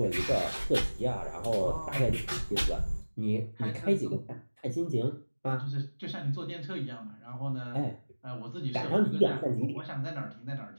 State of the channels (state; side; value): inverted; both; correlation -1.00